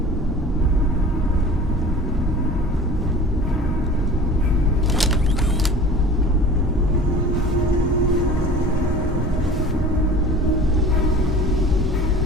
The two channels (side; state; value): both; normal; correlation 0.41